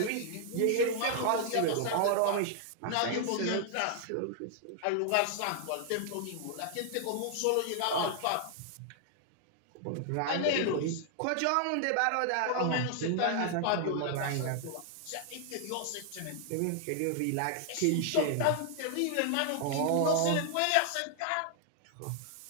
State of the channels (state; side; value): different; both; correlation 0.00